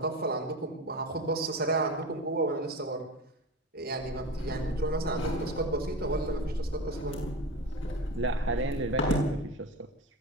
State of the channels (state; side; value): normal; both; correlation 0.27